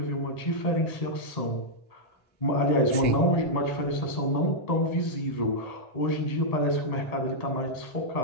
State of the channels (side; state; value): right; late; 1.8 ms